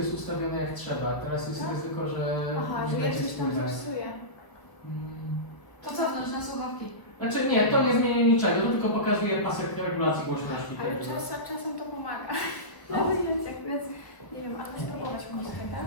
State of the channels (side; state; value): right; late; 1.0 ms